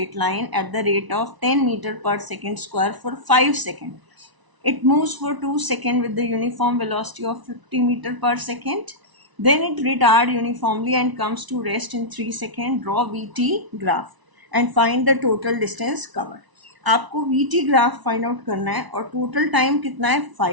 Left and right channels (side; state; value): left; late; 1.0 ms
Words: line at the rate of 10 meter per second square for 5 seconds. It moves for 2 seconds with the uniform velocity of 50 meter per second. Then it retards uniformly and comes to rest in 3 seconds. Draw VT graph and find the total distance covered. आपको VT graph find out करना है और total time कितना है?